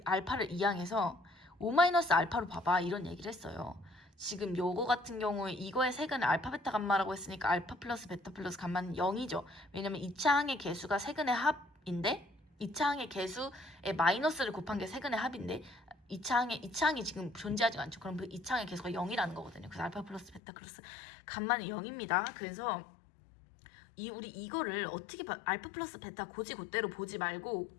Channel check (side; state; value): right; drops out; at 20.4 s